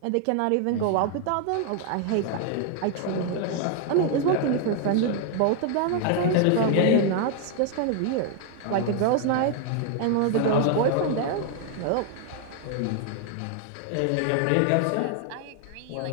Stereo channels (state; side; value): different; both; correlation 0.00